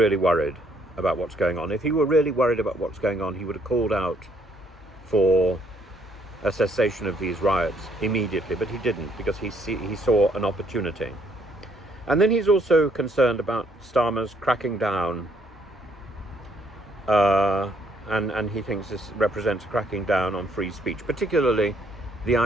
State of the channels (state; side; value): normal; both; correlation 0.68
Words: worried about what's going on, if he were really worried about what's going on, he would have called out for a cessation of these riots immediately, but he didn't, because he saw an opportunity. And then he's also concerned about Starmer's cracking down, and he thinks this represents a cracking down on free speech, particularly the